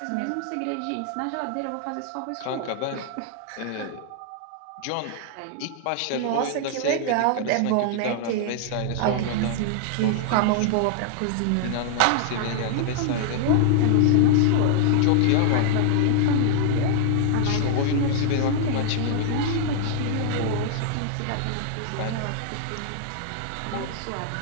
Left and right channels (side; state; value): both; different; correlation -0.01